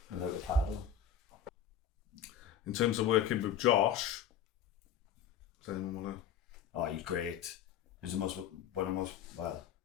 Without a paddle. In terms of working with Josh, does anyone want to? Oh, he's great. It was one of the most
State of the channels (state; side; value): quieter; right; 8.4 dB